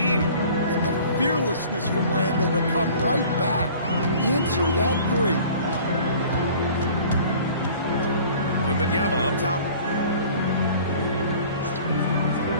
And the fearlessness from Randall to come right back. Answer that 3. Wembanyama up top.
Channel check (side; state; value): both; inverted; correlation -0.47